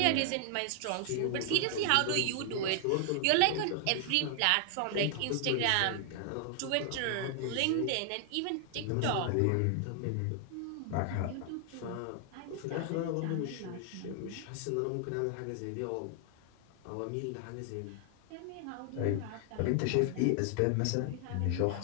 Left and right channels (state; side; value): different; both; correlation 0.00